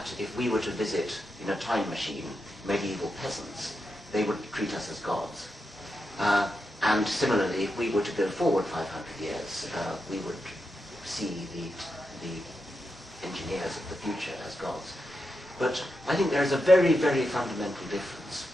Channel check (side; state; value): both; normal; correlation 0.87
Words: if we were to visit in a time machine medieval peasants, they would treat us as gods. And similarly, if we were to go forward 500 years, we would see the engineers of the future as gods. But I think there is a very, very fundamental difference